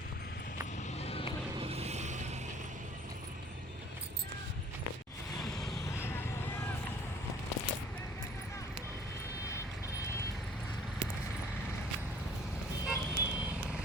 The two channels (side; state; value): both; normal; correlation 0.53